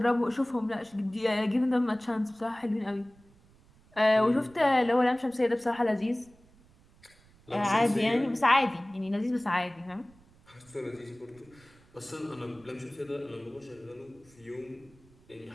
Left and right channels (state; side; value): noise; right; rumble, 28 dB below the sound